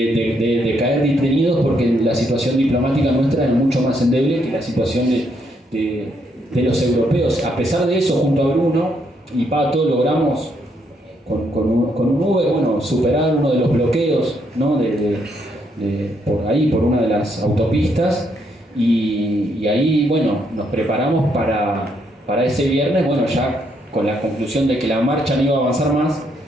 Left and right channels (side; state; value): both; normal; correlation 0.74